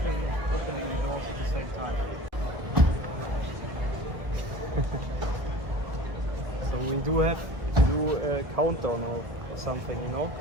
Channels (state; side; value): late; left; 1.6 ms